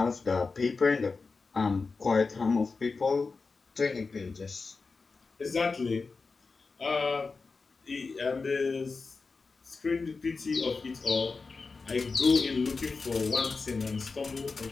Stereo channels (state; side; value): quieter; right; 4.3 dB